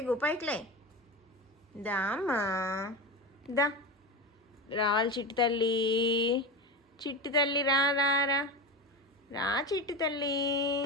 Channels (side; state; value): both; normal; correlation 0.22